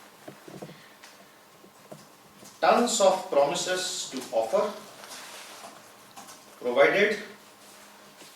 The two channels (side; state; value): both; identical; correlation 1.00